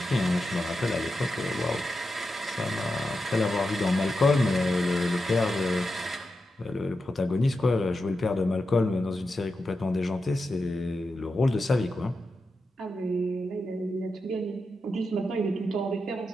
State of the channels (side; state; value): both; normal; correlation 0.89